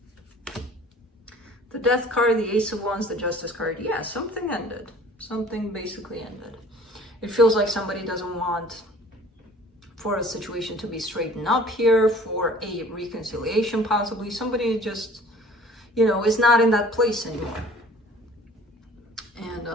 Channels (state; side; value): normal; both; correlation 0.50